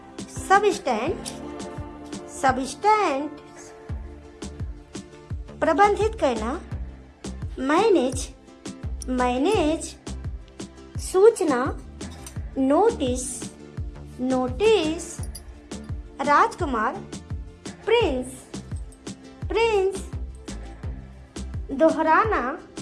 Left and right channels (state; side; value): identical; both; correlation 1.00